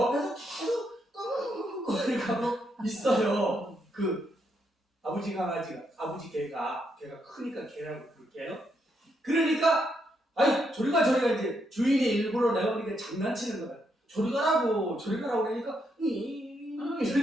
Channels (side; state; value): both; normal; correlation 0.78